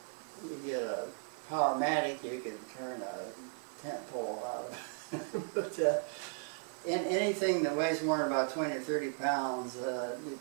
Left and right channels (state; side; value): silent; left; 54 dB below the other